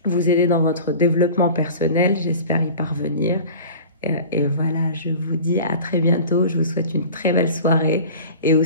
vous aider dans votre développement personnel. J'espère y parvenir. Et voilà, je vous dis à très bientôt. Je vous souhaite une très belle soirée et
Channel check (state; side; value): inverted; both; correlation -0.39